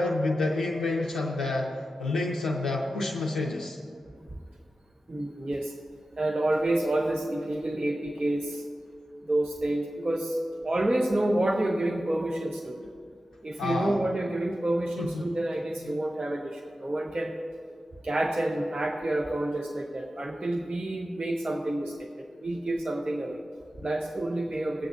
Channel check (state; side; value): normal; both; correlation 0.93